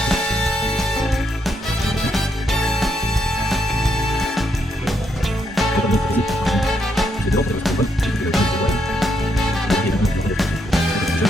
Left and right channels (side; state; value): both; normal; correlation 0.78